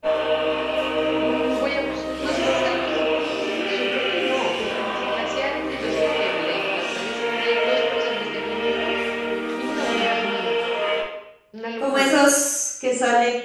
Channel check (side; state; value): both; identical; correlation 1.00